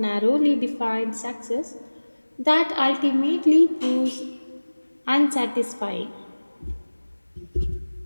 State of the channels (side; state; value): both; inverted; correlation -1.00